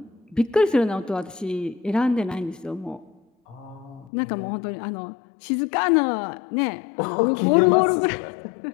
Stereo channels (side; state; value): right; drops out; at 4.1 s